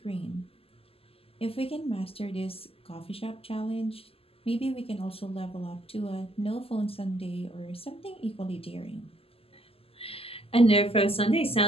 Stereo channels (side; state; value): right; late; 0.28 ms